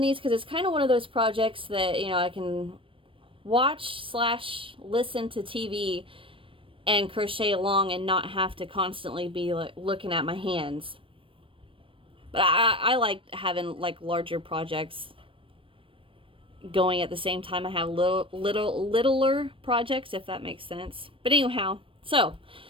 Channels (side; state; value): left; late; 0.25 ms